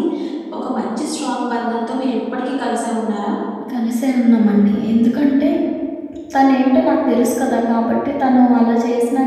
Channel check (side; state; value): both; identical; correlation 1.00